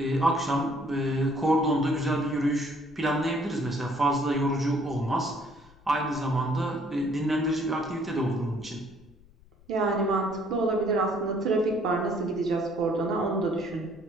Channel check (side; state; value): left; noise; rumble, 26 dB below the sound